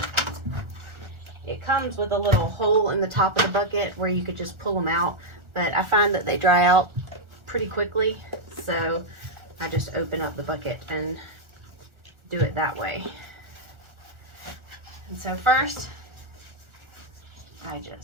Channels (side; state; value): left; late; 1.4 ms